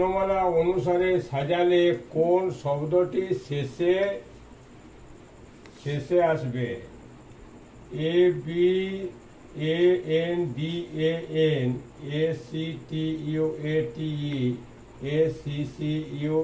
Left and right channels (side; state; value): both; identical; correlation 1.00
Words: অনুসারে সাজালে কোন শব্দটি শেষে আসবে? A B, A N D, A N, A C T U, A T E, A C C U,